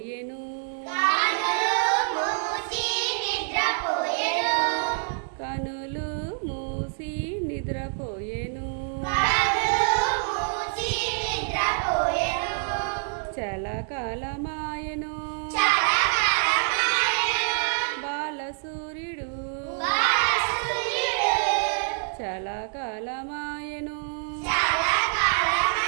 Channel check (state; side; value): silent; left; 57 dB below the other